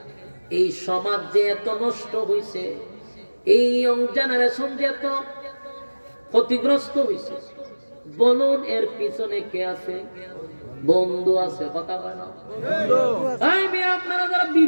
এই সমাজ যে এত নষ্ট হইছে, এই ইয়ং জেনারেশন যে এত ক্ষতিগ্রস্ত হইছে, বলুন এর পিছনে কে আছে? বন্ধু আছে। কথা কয় না? আপনারা যারা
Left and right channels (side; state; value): both; inverted; correlation -1.00